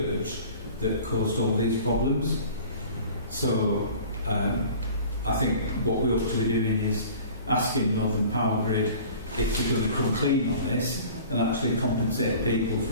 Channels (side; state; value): both; inverted; correlation -0.44